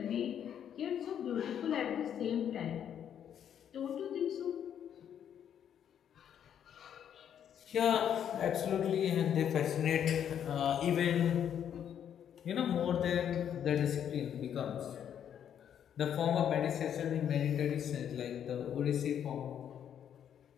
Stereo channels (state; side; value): quieter; right; 9.2 dB